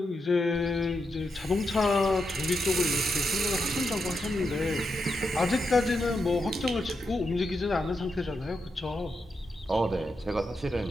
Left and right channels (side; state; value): both; normal; correlation 0.85